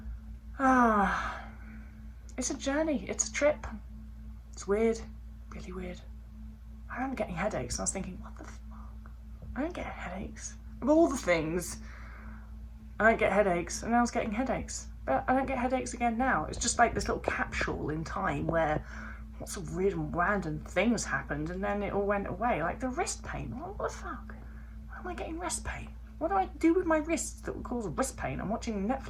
it's a journey, it's a trip. It's weird, really weird. I remember getting headaches and I was thinking, what the fuck? I don't get headaches. Of all the things, I don't get headaches, and I was getting headaches. But I don't get headaches again now. It's just like this little capsule in time where lots of weird and random things happened and then it all went away. Like the wrist pain. What the fuck? Why am I getting wrist pain? What do I do with my wrists that would cause wrist pain? I'm watching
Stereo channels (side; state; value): both; identical; correlation 1.00